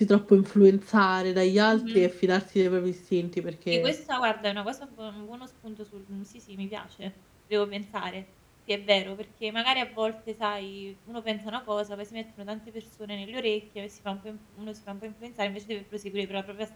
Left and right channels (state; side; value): identical; both; correlation 1.00